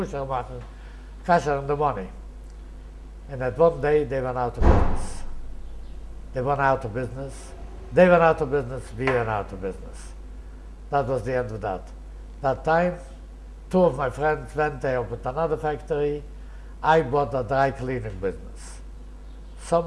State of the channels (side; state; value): both; identical; correlation 1.00